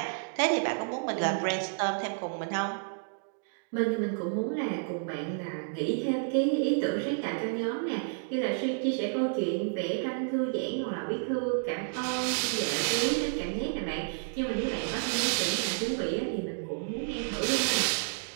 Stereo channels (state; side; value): silent; left; digital silence